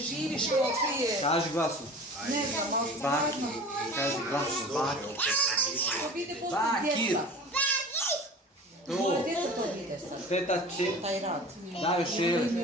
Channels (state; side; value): normal; both; correlation 0.39